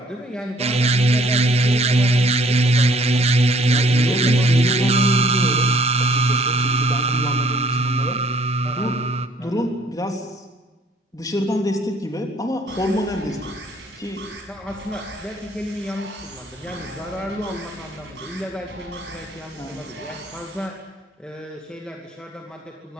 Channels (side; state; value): both; normal; correlation 0.61